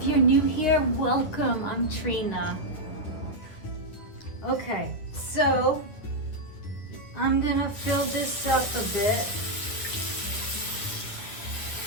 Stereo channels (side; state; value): right; late; 9.8 ms